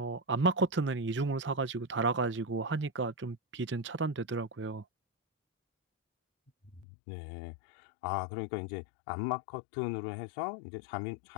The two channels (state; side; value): drops out; right; at 6.9 s